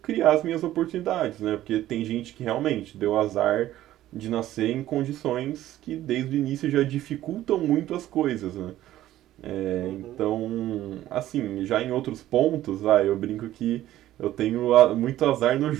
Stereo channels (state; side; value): quieter; left; 13.9 dB